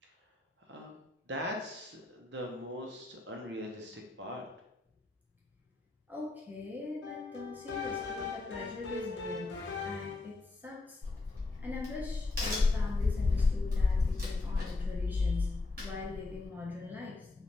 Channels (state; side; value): quieter; right; 3.3 dB